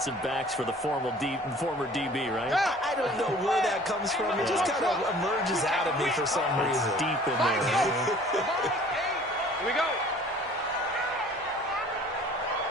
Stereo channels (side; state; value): both; normal; correlation 0.50